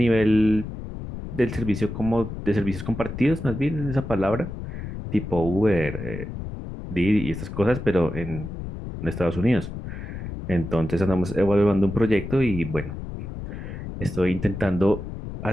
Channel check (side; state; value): left; noise; rumble, 8 dB below the sound